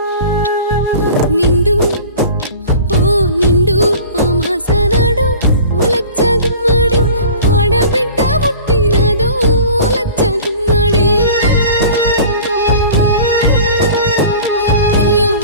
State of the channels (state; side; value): inverted; both; correlation -0.41